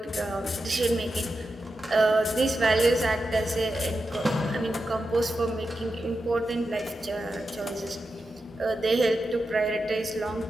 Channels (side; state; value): both; normal; correlation 0.89